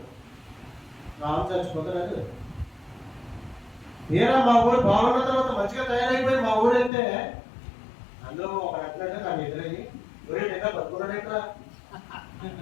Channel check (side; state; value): right; drops out; at 6.9 s